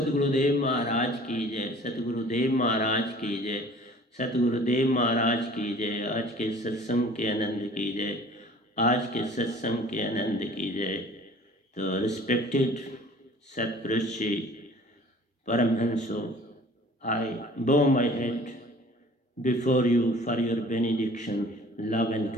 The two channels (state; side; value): normal; both; correlation 0.48